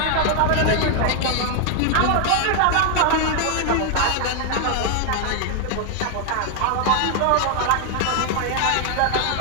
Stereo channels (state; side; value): different; both; correlation 0.00